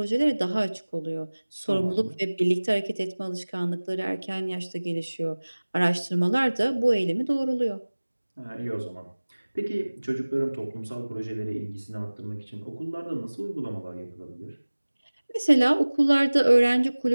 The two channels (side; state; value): both; inverted; correlation -1.00